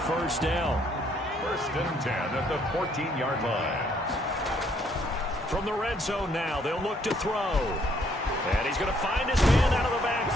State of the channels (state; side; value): normal; both; correlation 0.67